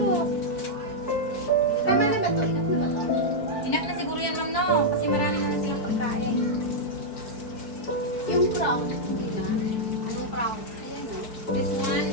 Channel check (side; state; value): right; late; 4.6 ms